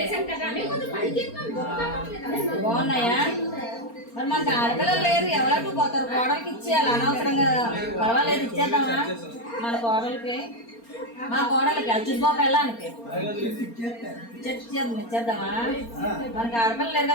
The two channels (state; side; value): late; right; 4.3 ms